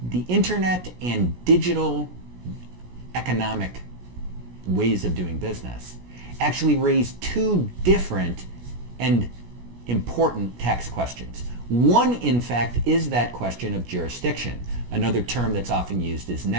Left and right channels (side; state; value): left; late; 17 ms